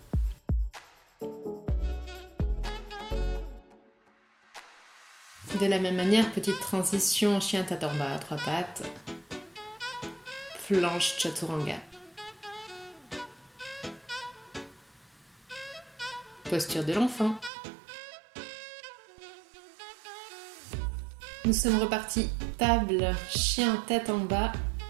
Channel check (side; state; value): left; drops out; at 17.5 s